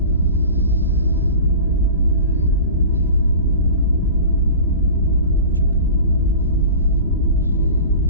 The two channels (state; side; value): inverted; both; correlation -0.36